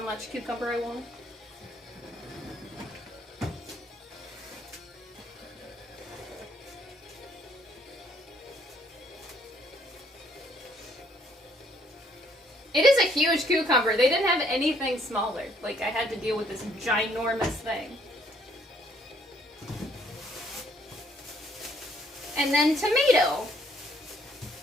cucumber I want. It is a huge cucumber. They didn't have anything smaller. Like, I had to deal with this ginormous thing. And then tomato.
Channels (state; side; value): normal; both; correlation 0.65